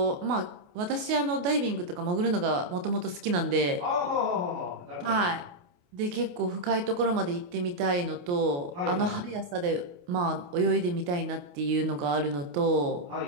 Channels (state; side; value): late; left; 28 ms